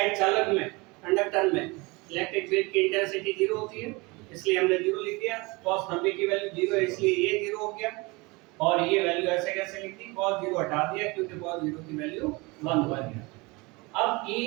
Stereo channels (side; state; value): left; quieter; 25.5 dB